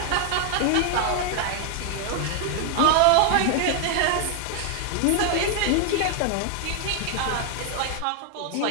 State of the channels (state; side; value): different; both; correlation 0.00